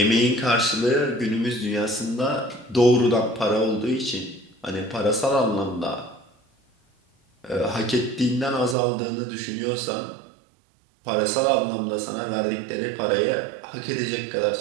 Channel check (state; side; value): drops out; left; at 8.8 s